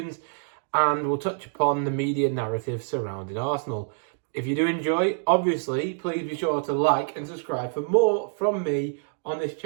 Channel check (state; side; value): silent; left; digital silence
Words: and we'll touch upon the media narrative surrounding Arsenal. If you do enjoy, obviously, please be sure to like and subscribe for more from me on this